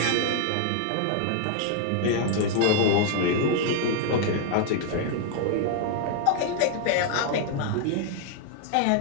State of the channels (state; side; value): different; both; correlation 0.00